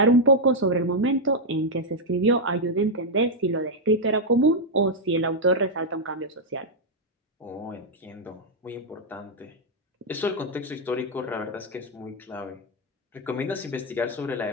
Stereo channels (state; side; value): normal; both; correlation -0.02